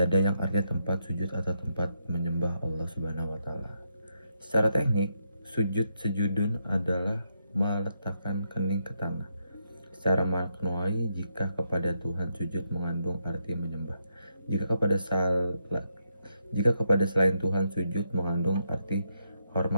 yang artinya tempat sujud atau tempat menyembah Allah Subhanahu wa taala. Secara teknik, sujudun adalah meletakkan kening ke tanah. Secara maknawi, jika kepada Tuhan sujud mengandung arti menyembah. Jika kepada selain Tuhan sujud mengandung arti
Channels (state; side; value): inverted; both; correlation -0.80